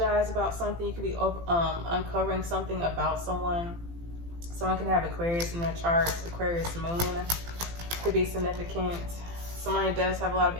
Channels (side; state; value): left; late; 18 ms